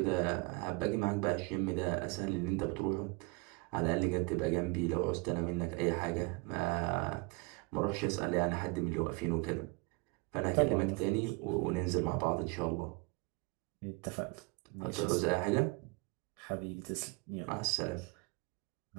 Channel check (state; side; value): quieter; left; 28.0 dB